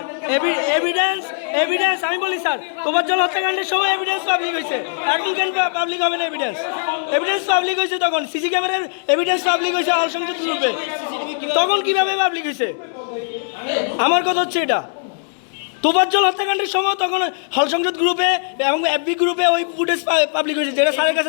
এভিডেন্স আমি বলি স্যার, তোফাজ্জল হত্যাকাণ্ডের সময় এভিডেন্স পাবলিক হয়েছে, এখন কেন পাবলিক হবে না? এভিডেন্স পাবলিক হয়েছে তখন, সিসি ক্যামেরার এভিডেন্স পাবলিক হয়েছে হল সংসদ গ্রুপে, তখন কিভাবে পাবলিক হয়েছে? আমার কথা হচ্ছে এটা, তোফাজ্জল হত্যাকাণ্ডের সময় তখন হল সংসদ গ্রুপে এবং এফবি গ্রুপে ওই ফুটেজ পাবলিক হয়েছে, যেটা স্যারের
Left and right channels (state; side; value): silent; right; digital silence